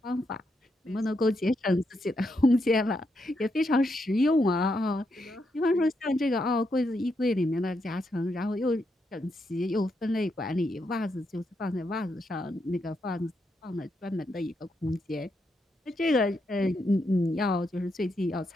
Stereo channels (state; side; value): normal; both; correlation 0.81